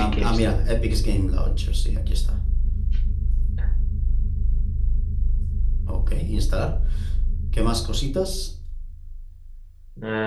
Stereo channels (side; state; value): both; identical; correlation 1.00